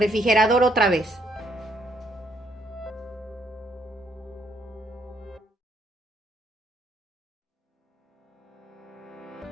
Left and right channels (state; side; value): normal; both; correlation 0.71